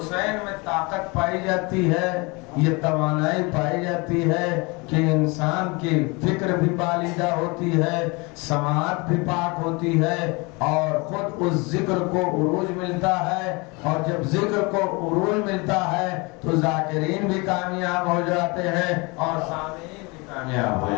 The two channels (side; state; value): right; quieter; 27.4 dB